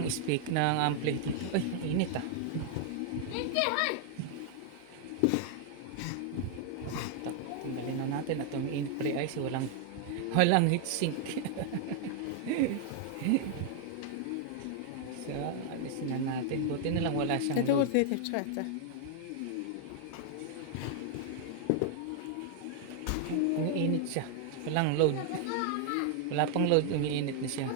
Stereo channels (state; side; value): different; both; correlation 0.00